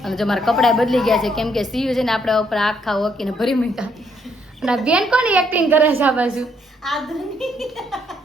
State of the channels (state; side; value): normal; both; correlation 0.71